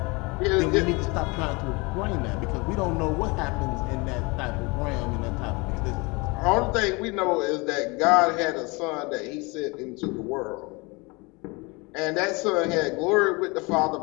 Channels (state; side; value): quieter; right; 26.9 dB